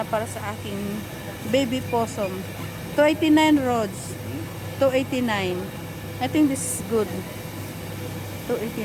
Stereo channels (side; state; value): both; identical; correlation 1.00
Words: para sa aking baby possum. 289 rods. 289. I think this is good.